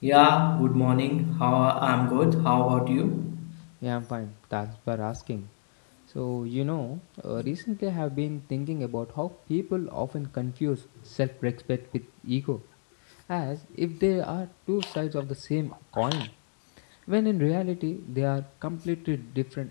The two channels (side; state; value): right; silent; digital silence